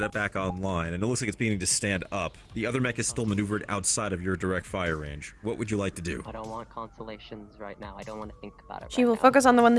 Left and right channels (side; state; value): both; identical; correlation 1.00